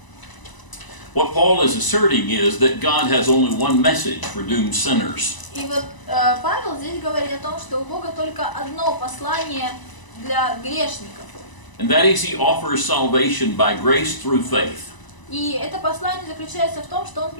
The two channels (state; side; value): late; right; 1.0 ms